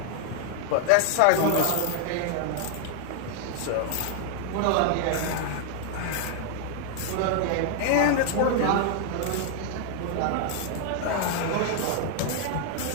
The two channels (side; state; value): both; different; correlation 0.00